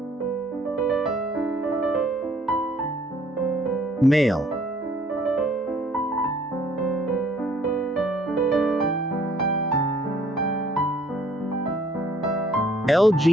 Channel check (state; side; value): normal; both; correlation 0.60